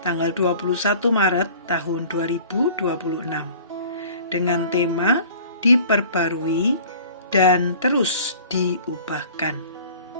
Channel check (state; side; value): inverted; both; correlation -0.47